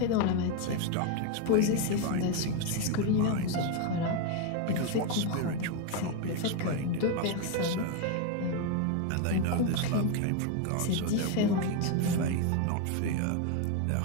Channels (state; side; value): different; both; correlation 0.02